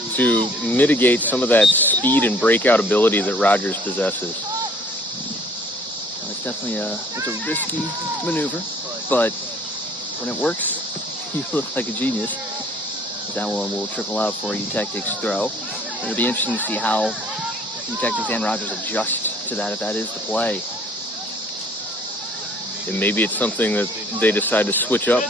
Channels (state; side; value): normal; both; correlation 0.56